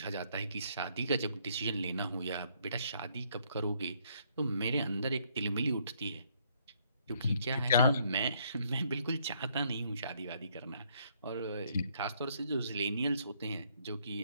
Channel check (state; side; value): inverted; both; correlation -0.68